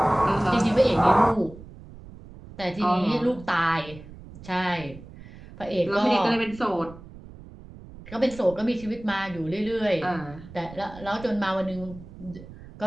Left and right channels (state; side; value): noise; right; rumble, 17 dB below the sound